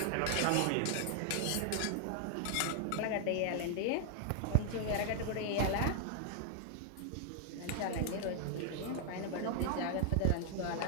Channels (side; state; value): both; different; correlation 0.00